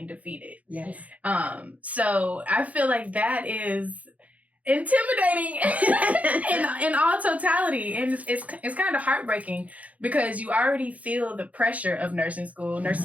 defeated. Yes. So I feel like that is intimidating in all totality. And it's kind of heartbreaking because you already feel the pressure of nursing school.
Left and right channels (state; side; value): late; left; 0.070 ms